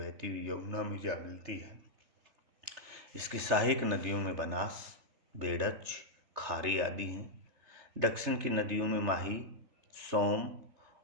हुई यमुना में जा मिलती है। इसकी सहायक नदियों में बनास, बेड़च, खारी आदि हैं। दक्षिण की नदियों में माही, सोम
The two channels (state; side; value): late; left; 3.4 ms